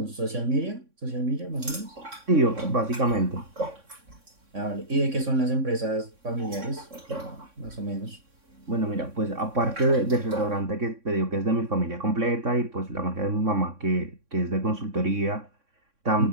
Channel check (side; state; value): left; late; 3.6 ms